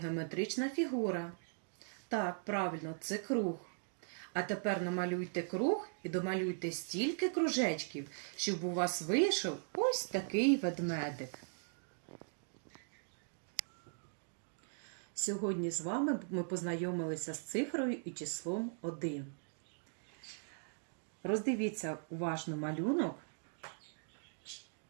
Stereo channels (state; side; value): silent; left; digital silence